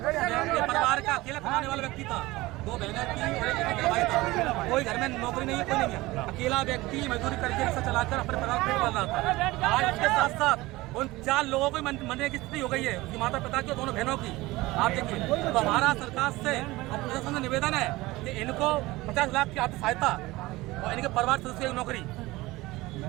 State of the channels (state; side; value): quieter; left; 19.8 dB